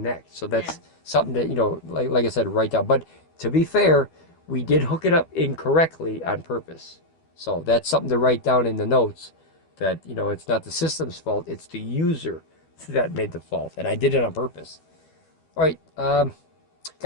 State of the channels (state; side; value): late; right; 12 ms